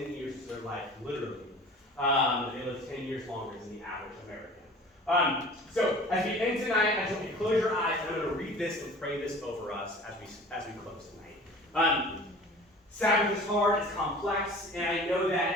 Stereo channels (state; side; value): normal; both; correlation 0.43